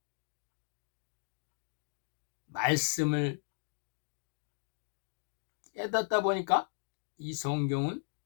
말씀을 깨닫다 보니까 이 성경은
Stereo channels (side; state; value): right; silent; digital silence